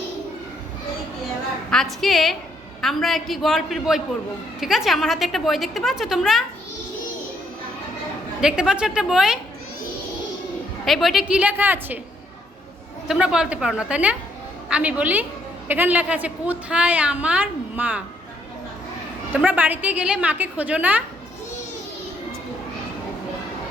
আজকে আমরা একটি গল্পের বই পড়ব, ঠিক আছে? আমার হাতে একটা বই দেখতে পাচ্ছ, তোমরা দেখতে পাচ্ছ একটা বই? এই বইটা কি লেখা আছে তোমরা বলতে পারো না, তাই না? আমি বলি, এখানে লেখা আছে কোথায় আমার মা। তোমরা বাড়িতে গেলে মাকে খোঁজো না?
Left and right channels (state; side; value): normal; both; correlation 0.71